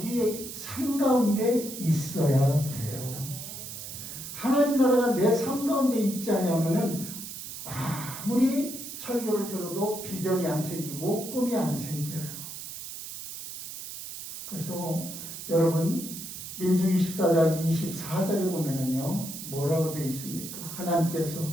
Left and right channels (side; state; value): right; noise; hiss, 9 dB below the sound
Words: 삶 가운데 있어야 돼요. 하나님 나라가 내 삶 가운데 있지 않으면은 아무리 설교를 들어도 비전이 안 생기고 꿈이 안 생겨요. 그래서 여러분 민수기 14장 24절에 보면은요 뭐라고 되어 있습니까? 하나님께서